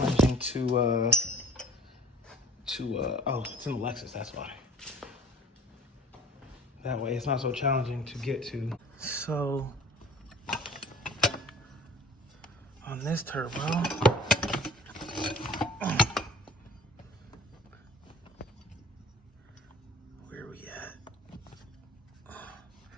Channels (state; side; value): normal; both; correlation 0.47